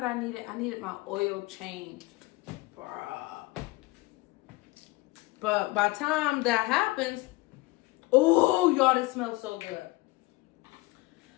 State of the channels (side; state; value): right; quieter; 21.4 dB